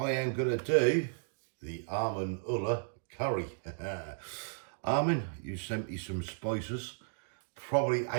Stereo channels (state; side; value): silent; left; digital silence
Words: am going to do the Amin curry. Amin, you sent me some spices probably